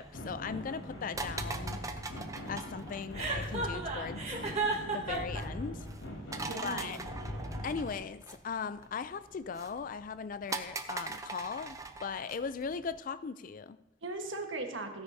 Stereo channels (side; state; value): both; normal; correlation 0.09